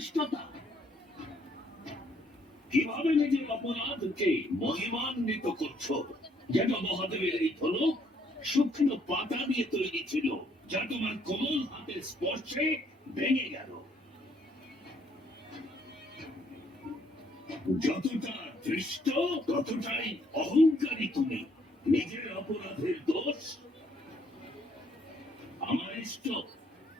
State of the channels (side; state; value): both; normal; correlation 0.68